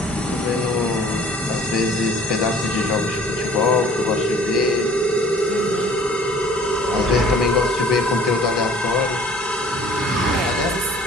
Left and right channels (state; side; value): normal; both; correlation 0.52